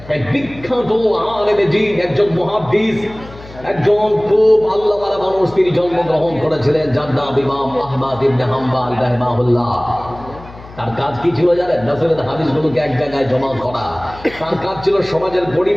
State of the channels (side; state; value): left; noise; hum, 18 dB below the sound